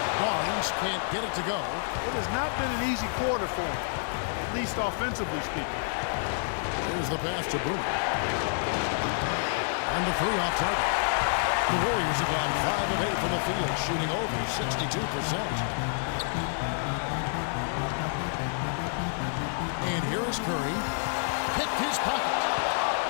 Barnes can't get it to go. It has not been an easy quarter for him, at least offensively speaking. There's the pass to Bruno. And the 3 off target. The Warriors have gone 5 of 8 from the field, shooting over 62%. And here is Curry. Picked his pocket.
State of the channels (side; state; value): right; silent; digital silence